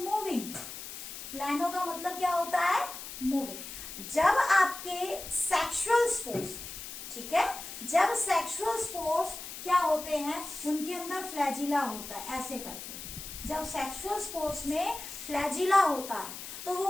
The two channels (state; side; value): noise; left; hiss, 10 dB below the sound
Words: प्लानो का मतलब क्या होता है? मूविंग। जब आपके सेक्सुअल स्पोर्स, ठीक है, जब सेक्सुअल स्पोर्स क्या होते हैं, उनके अंदर फ्लैजिला होता है, ऐसे करके। जब सेक्सुअल स्पोर्स में फ्लैजिला होता है तो